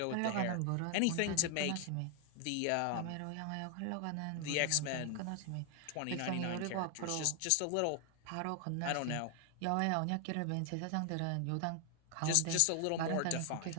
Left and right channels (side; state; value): both; different; correlation 0.00